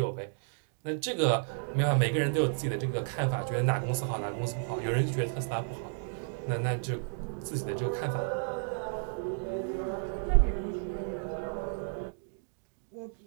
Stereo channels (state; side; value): silent; left; digital silence